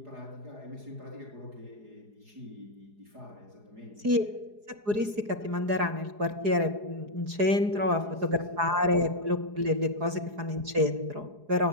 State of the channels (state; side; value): late; left; 4.8 ms